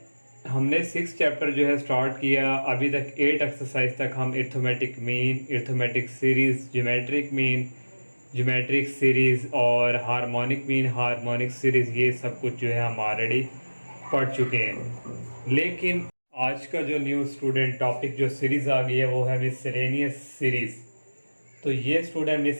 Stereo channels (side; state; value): both; inverted; correlation -1.00